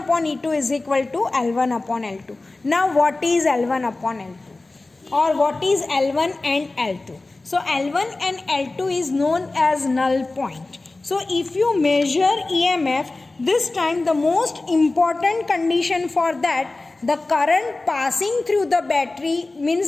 upon E2 is equal to L1 upon L2. Now what is L1 upon L2? Or what is L1 and L2? So L1 and L2 is known as null point. So if you measure EMF, this time the most important condition for that, the current passing through the battery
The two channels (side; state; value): right; quieter; 3.2 dB